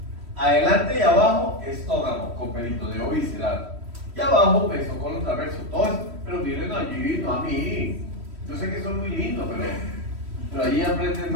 Adelante y abajo, estómago con peritoneo visceral. Y abajo, mesocolon transverso. Todo esto. Pero miren allí, no a mí. Yo sé que son muy lindos, pero allí aprenden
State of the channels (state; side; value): late; left; 3.1 ms